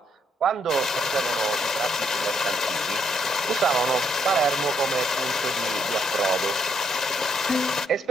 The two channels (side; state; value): both; normal; correlation 0.73